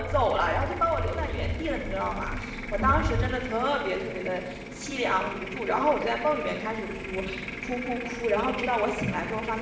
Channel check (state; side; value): identical; both; correlation 1.00